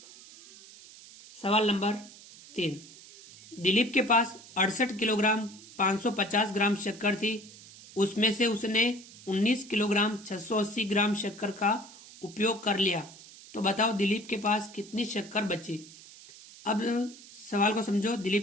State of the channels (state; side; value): noise; right; hiss, 19 dB below the sound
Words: सवाल नंबर 3। दिलीप के पास 68 किलोग्राम 550 ग्राम शक्कर थी, उसमें से उसने 19 किलोग्राम 680 ग्राम शक्कर का उपयोग कर लिया, तो बताओ दिलीप के पास कितनी शक्कर बची। अब सवाल को समझो।